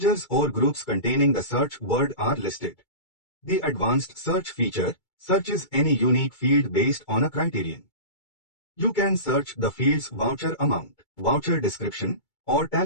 or groups containing the search word are listed. The advanced search feature searches any unique field based on a criterion. You can search the field's voucher amount, voucher description, or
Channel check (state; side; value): late; right; 2.3 ms